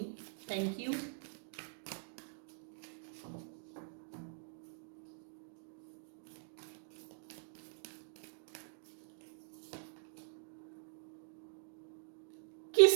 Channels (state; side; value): silent; left; digital silence